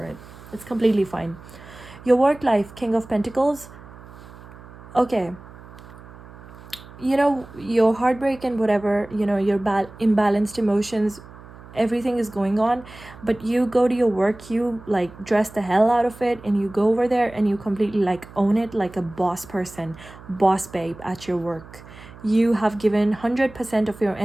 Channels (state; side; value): noise; right; hum, 19 dB below the sound